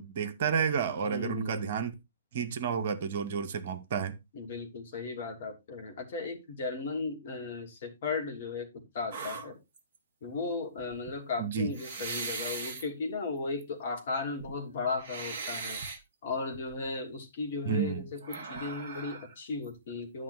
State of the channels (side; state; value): both; inverted; correlation -0.44